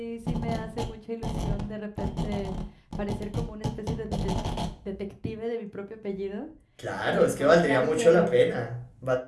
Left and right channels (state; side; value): identical; both; correlation 1.00